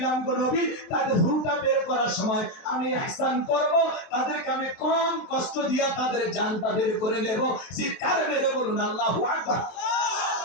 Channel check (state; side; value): late; right; 23 ms